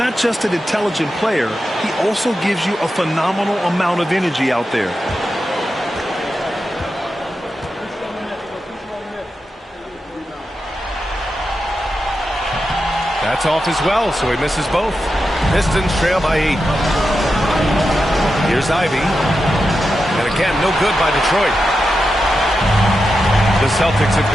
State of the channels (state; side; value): normal; both; correlation 0.89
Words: just an intelligent player, he also gives you a phenomenal amount of energy out there. That's off as well, so he misses both. Pistons trail by 8. Here's Ivy. And again, no good by Detroit. The Celtics have